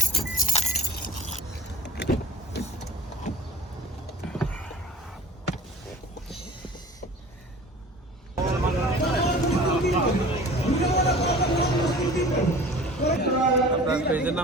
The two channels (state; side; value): normal; both; correlation 0.44